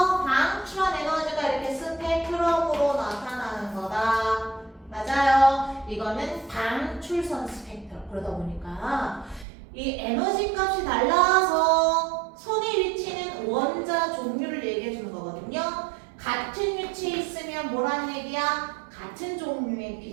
방출한 에너지가 이렇게 스펙트럼으로 나타나는 거다. 맞아요. 이거는 방출선 스펙트럼. 그러다 보니까 이 에너지 값이 달라서 선의 위치는 원자 종류를 얘기해 주는 거거든요. 같은 위치에 있으면 뭐란 얘기야? 같은 종류의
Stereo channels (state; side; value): drops out; left; at 9.5 s